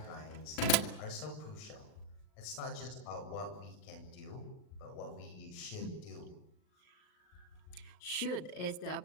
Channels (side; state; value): right; late; 39 ms